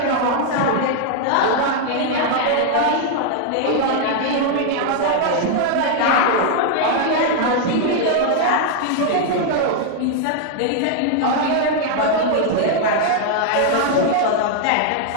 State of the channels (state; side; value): different; both; correlation 0.00